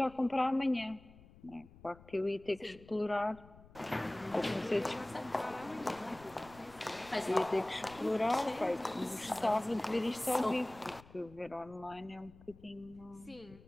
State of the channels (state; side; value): noise; left; rumble, 22 dB below the sound